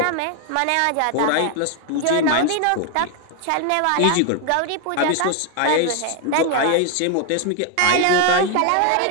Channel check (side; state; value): both; different; correlation 0.01